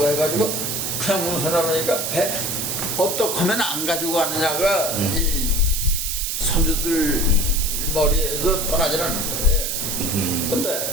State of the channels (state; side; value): noise; right; hiss, 1 dB below the sound